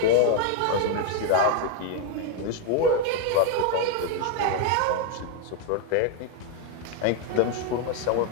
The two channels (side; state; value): both; different; correlation 0.01